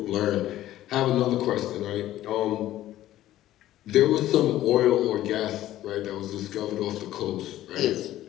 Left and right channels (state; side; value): quieter; right; 13.9 dB